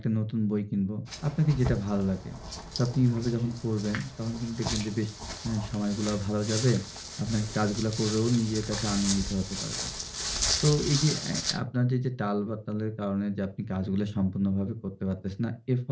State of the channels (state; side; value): identical; both; correlation 1.00